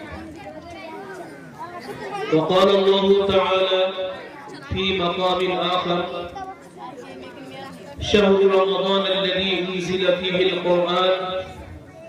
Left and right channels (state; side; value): identical; both; correlation 1.00